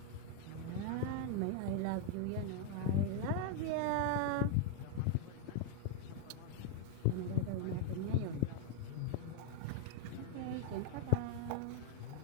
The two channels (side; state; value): both; different; correlation 0.00